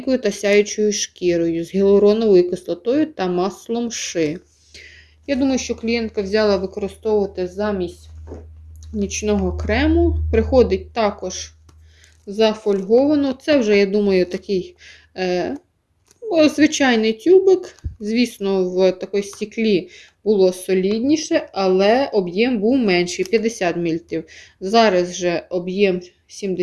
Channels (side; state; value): both; identical; correlation 1.00